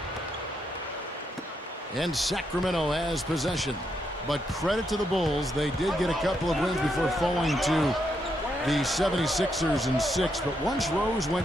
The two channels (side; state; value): both; normal; correlation 0.79